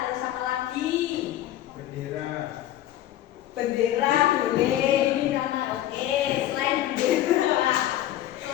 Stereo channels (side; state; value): right; quieter; 13.1 dB